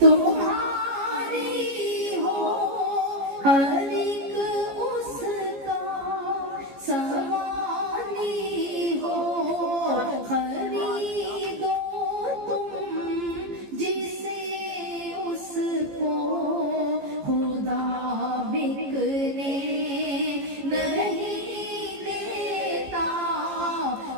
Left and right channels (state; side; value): late; left; 15 ms